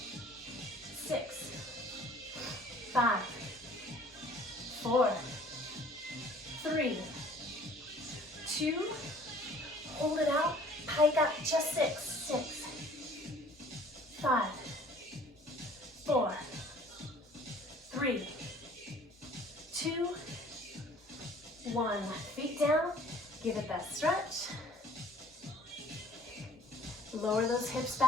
6, 5, 4, 3, 2, hold it out, pike up, just 6, 6, 5, 4, 3, 2, 1. Feet down, give it that stretch. Lower those hips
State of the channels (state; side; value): normal; both; correlation 0.53